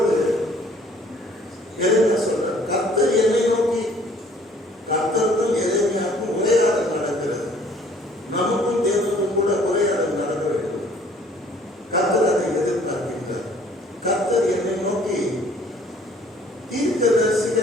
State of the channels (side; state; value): both; normal; correlation 0.57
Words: எரேமியா சொல்றார், கர்த்தர் என்னை நோக்கி, கர்த்தருக்கும் எரேமியாவுக்கும் உரையாடல் நடக்கிறது. நமக்கும் தேவனுக்கும் கூட உரையாடல் நடக்க வேண்டும். கர்த்தர் அதை எதிர்பார்க்கின்றார். கர்த்தர் என்னை நோக்கி,